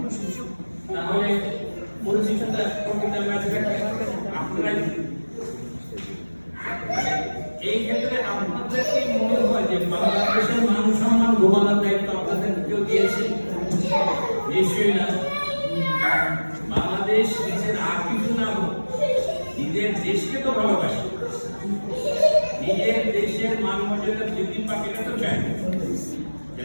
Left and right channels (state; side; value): inverted; both; correlation -1.00